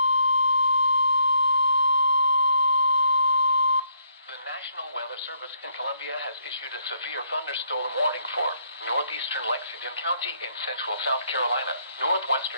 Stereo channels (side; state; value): both; inverted; correlation -0.71